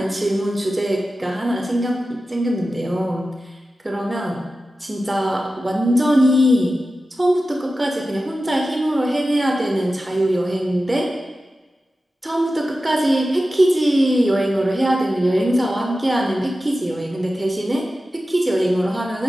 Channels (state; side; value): normal; both; correlation 0.94